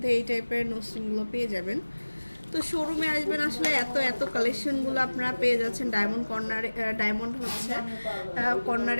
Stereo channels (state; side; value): inverted; both; correlation -1.00